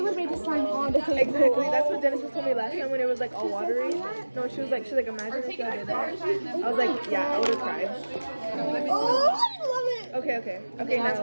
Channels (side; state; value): both; inverted; correlation -1.00